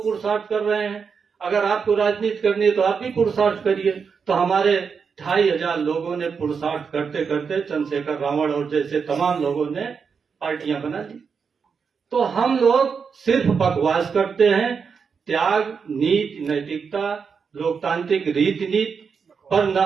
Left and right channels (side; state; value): left; quieter; 5.9 dB